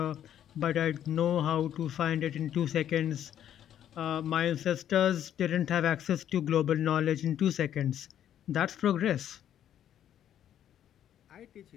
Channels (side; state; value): right; quieter; 10.5 dB